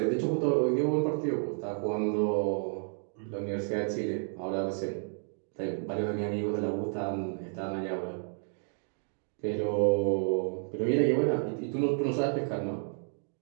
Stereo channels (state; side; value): silent; left; 57 dB below the other